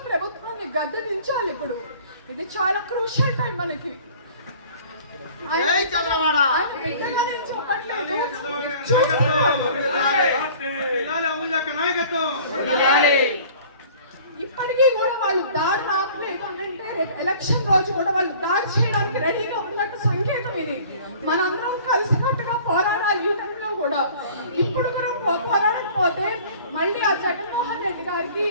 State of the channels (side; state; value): both; inverted; correlation -0.49